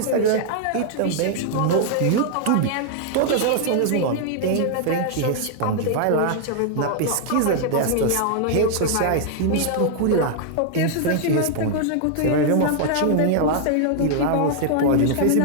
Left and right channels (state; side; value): different; both; correlation -0.01